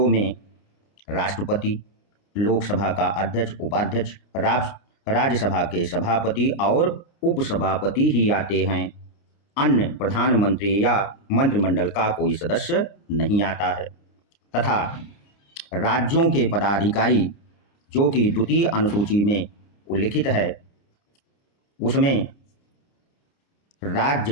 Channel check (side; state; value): right; late; 29 ms